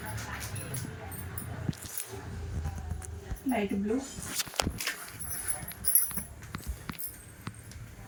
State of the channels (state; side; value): identical; both; correlation 1.00